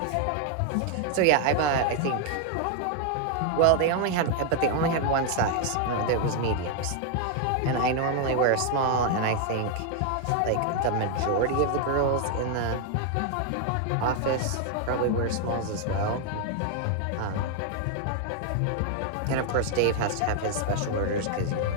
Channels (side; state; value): both; different; correlation 0.00